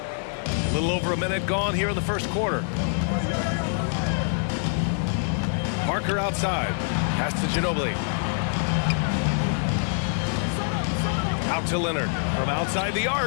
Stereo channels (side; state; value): right; silent; 62 dB below the other